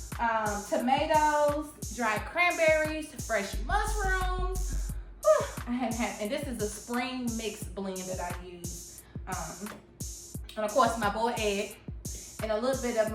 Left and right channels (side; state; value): both; identical; correlation 1.00